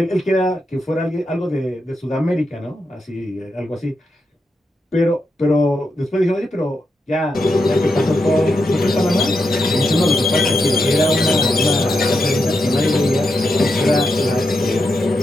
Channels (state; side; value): normal; both; correlation 0.85